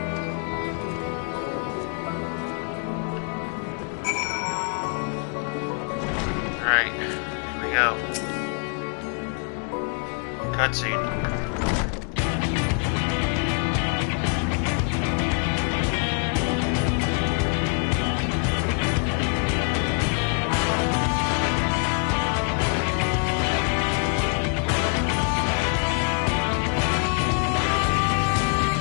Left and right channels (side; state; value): right; quieter; 38.3 dB